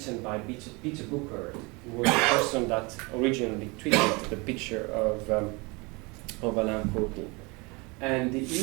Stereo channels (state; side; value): quieter; left; 27.2 dB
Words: by Peter Booker, who was the person that originally tweeted the picture of Alain Kurdi. And